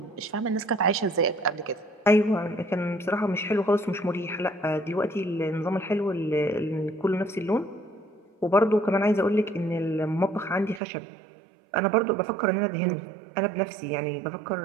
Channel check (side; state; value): left; drops out; at 10.8 s